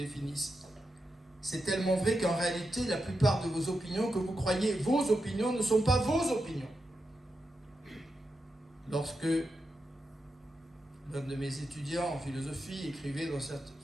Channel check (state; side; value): normal; both; correlation 0.87